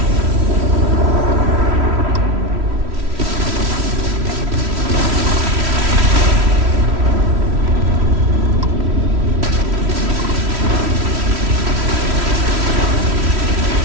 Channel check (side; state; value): left; late; 3.1 ms